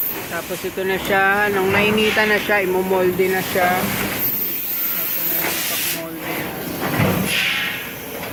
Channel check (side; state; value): both; identical; correlation 1.00